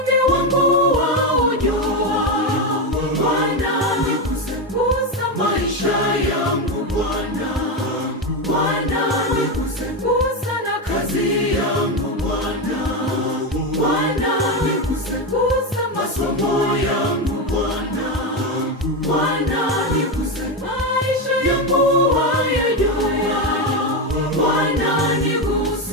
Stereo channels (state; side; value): normal; both; correlation 0.11